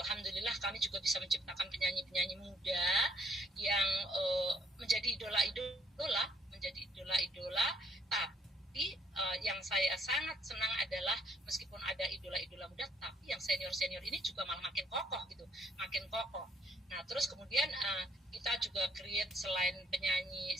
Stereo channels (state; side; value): normal; both; correlation 0.65